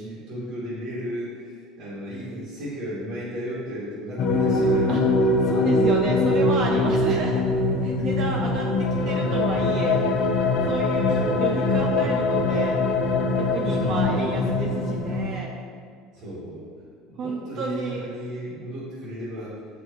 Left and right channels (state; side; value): normal; both; correlation 0.37